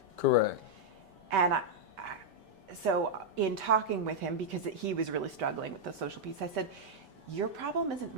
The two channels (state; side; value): late; left; 5.1 ms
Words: Correct. And so in talking with him, because he was really struggling with the social piece, I said, your problem isn't